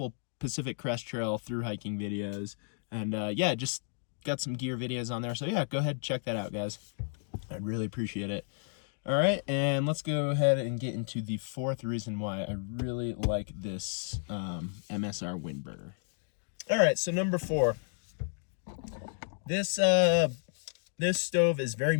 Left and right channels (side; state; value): right; silent; 56 dB below the other